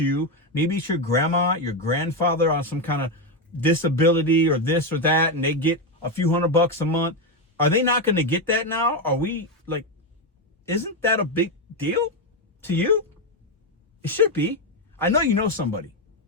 Maybe it's your grandma, your grandfather on some kind of disability or this or that, and they get a few $100 a month. Are they not going to get that now? Are we like, isn't that a big deal to you? It should be. I know you know somebody.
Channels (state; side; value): normal; both; correlation 0.08